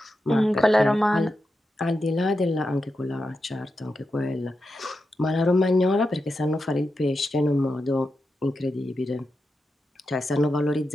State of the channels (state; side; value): normal; both; correlation 0.88